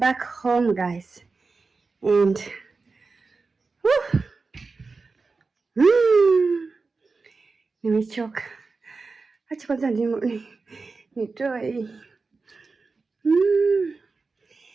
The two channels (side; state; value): left; quieter; 4.1 dB